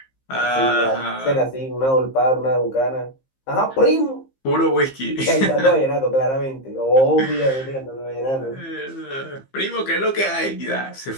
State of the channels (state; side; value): late; right; 15 ms